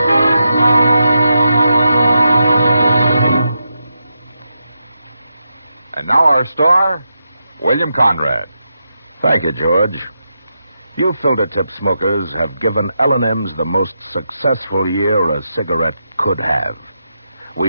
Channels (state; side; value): inverted; both; correlation -0.86